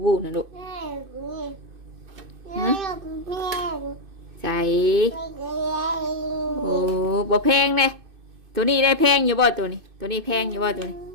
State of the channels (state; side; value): late; left; 2.6 ms